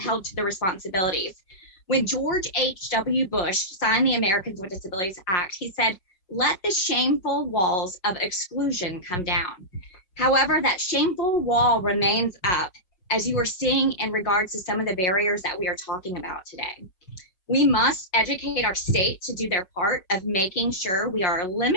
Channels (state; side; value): late; right; 5.5 ms